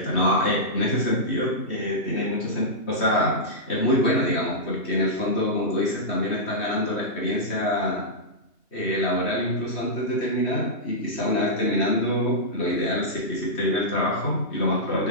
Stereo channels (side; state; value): right; late; 3.1 ms